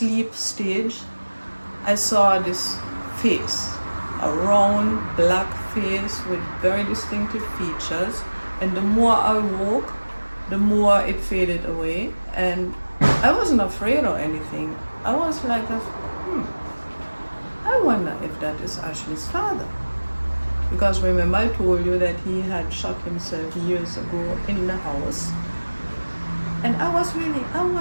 stage, I saw this face, a round black face with very distinctive features, and the more I woke, the more it faded away, and I wasn't afraid or anything. I was like, I wonder if that is Ashley's father. Because remember I told you that he had shot himself years ago in the house. And I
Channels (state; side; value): inverted; both; correlation -1.00